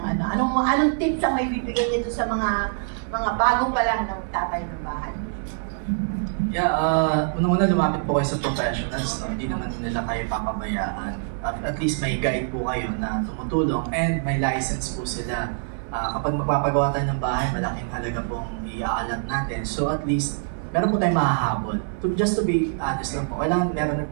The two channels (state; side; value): silent; left; digital silence